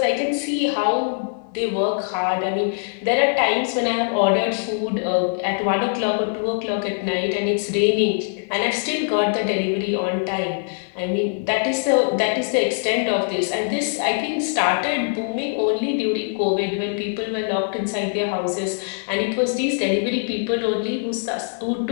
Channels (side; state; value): right; silent; digital silence